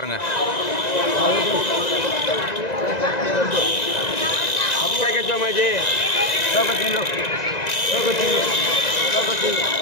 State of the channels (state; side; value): late; right; 1.9 ms